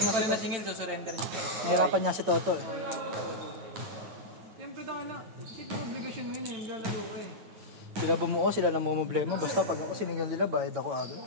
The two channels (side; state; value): left; late; 8.9 ms